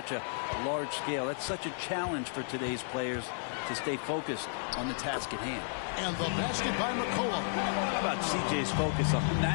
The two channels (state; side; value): silent; right; 56 dB below the other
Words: a large scale. That's such a challenge for today's players to stay focused on the task at hand. And the basket by McCollum. How about CJ's focus on